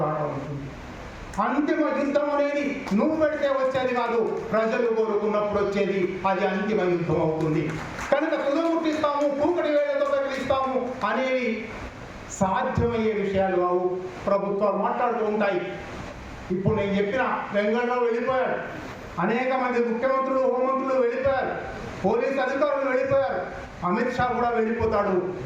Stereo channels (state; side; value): identical; both; correlation 1.00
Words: ఉంటుంది. అంతిమ యుద్ధం అనేది నువ్వు పెడితే వచ్చేది కాదు, ప్రజలు కోరుకున్నప్పుడు వచ్చేది, అది అంతిమ యుద్ధం అవుతుంది. కనుక తుదముట్టిస్తాము, కూకటి వేళ్లతో పెరిగిస్తాము అనేవి సాధ్యమయ్యే విషయాలు కావు. ప్రభుత్వాలు మాట్లాడుతూ ఉంటాయి. ఇప్పుడు నేను చెప్పిన వెంగళరావు వెళ్ళిపోయాడు, అనేక మంది ముఖ్యమంత్రులు, హోంమంత్రులు వెళ్ళిపోయారు, పోలీసు అధికారులు వెళ్ళిపోయారు, అమిత్ షా కూడా వెళ్ళిపోతాడు.